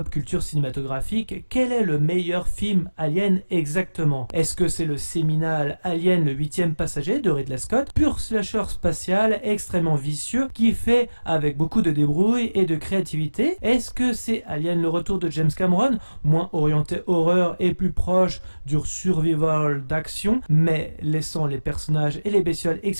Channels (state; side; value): inverted; both; correlation -1.00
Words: culture cinématographique. Quel est le meilleur film Alien exactement? Est-ce que c'est le séminal Alien le 8e passager de Ridley Scott, pur slasher spatial extrêmement vicieux qui fait avec beaucoup de débrouille et de créativité? Est-ce que c'est Alien le retour de James Cameron, moins orienté horreur et plus proche du survival d'action, mais laissant les personnages et les bestioles